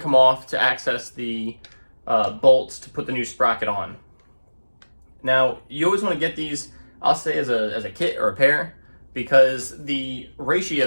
come off to access the bolts to put the new sprocket on. Now, you always want to get these, I'll say as a kit or a pair, because the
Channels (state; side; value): inverted; both; correlation -1.00